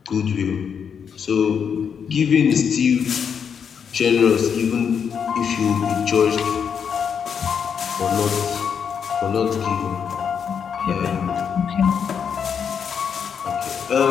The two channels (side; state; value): right; quieter; 7.2 dB